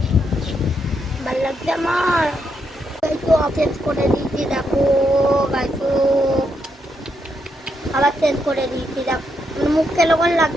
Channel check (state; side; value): normal; both; correlation 0.80